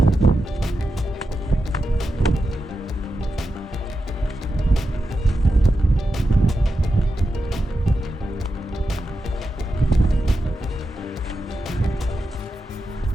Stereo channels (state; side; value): normal; both; correlation 0.89